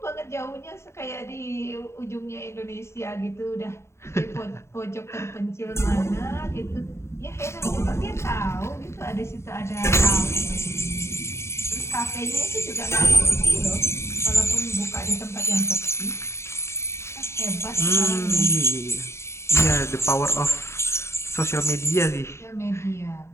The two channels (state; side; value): late; right; 0.13 ms